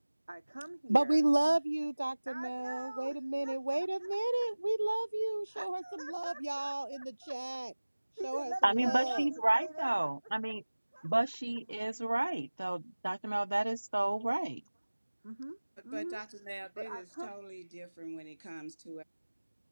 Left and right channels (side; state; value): both; inverted; correlation -1.00